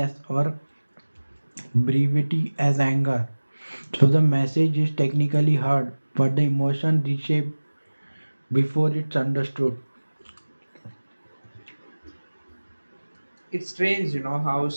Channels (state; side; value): inverted; both; correlation -1.00